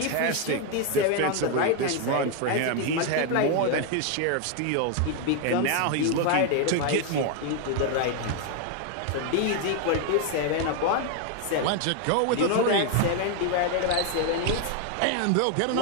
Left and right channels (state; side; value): different; both; correlation 0.01